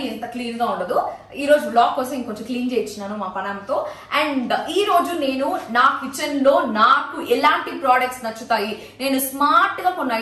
ఇంత క్లీన్ గా ఉండదు. ఈ రోజు బ్లాగ్ కోసం ఇంకొంచెం క్లీన్ చేయించినాను మా పనంతో. అండ్ ఈ రోజు నేను నా కిచెన్ లో నాకు ఎలాంటి ప్రోడక్ట్స్ నచ్చుతాయి, నేను స్మార్ట్ గా కొన్ని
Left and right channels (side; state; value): both; identical; correlation 1.00